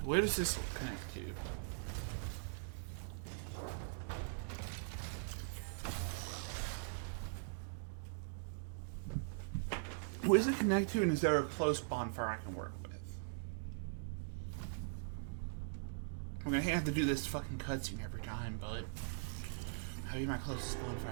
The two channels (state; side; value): silent; left; digital silence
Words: where does this connect to? Where does it connect to, and is there a close bonfire I can work with? I'm gonna have to do this fucking cutscene every time, bud. That'll be my closest